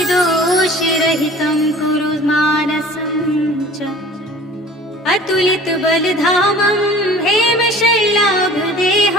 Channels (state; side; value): normal; both; correlation 0.46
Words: कुरु मानसं च। अतुलितबलधामं